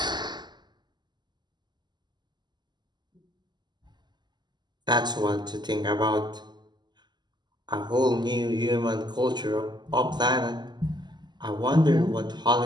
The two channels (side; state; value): left; late; 0.21 ms